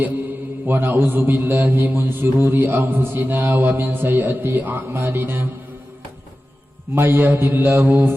wa na'udzu billahi min syururi anfusina wa min sayyiati a'malina may yahdihillahu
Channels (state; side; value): normal; both; correlation 0.94